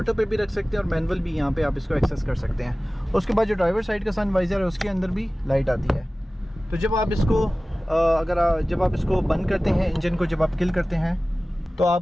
पे भी रख सकते हैं और मैनुअल भी यहाँ पे आप इसको एक्सेस कर सकते हैं। उसके बाद जो ड्राइवर साइड का सन वाइजर है उसके अंदर भी लाइट आती है। तो जब आप इसको जब आप इसको बंद करते हैं इंजन को, जब आप किल करते हैं तो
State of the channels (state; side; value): normal; both; correlation 0.97